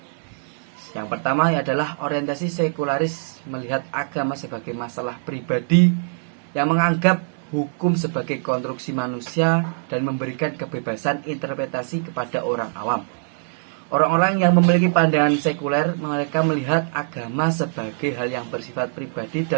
Yang pertama adalah orientasi sekularis, melihat agama sebagai masalah pribadi yang menganggap hukum sebagai konstruksi manusia dan memberikan kebebasan interpretasi kepada orang awam. Orang-orang yang memiliki pandangan sekuler, mereka melihat agama sebagai hal yang bersifat pribadi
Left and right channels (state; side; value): silent; left; digital silence